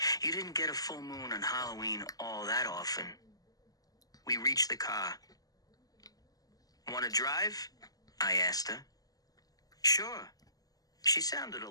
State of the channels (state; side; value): late; right; 0.18 ms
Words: You didn't get a full moon on Halloween all that often. We reached the car. Want to drive? I asked her. Sure. She sounded a